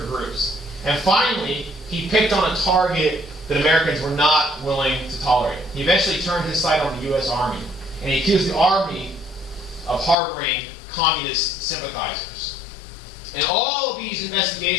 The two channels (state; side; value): drops out; right; at 10.2 s